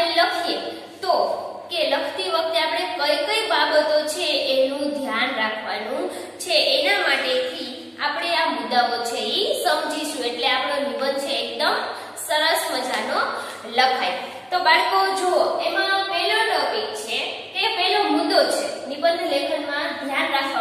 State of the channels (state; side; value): identical; both; correlation 1.00